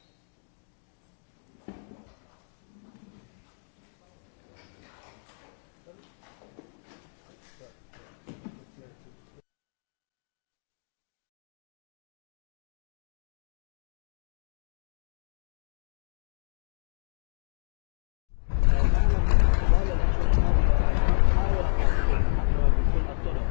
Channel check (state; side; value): silent; right; digital silence